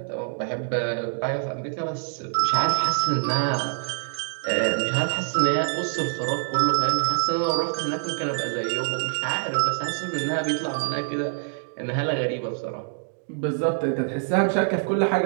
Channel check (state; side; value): silent; left; 62 dB below the other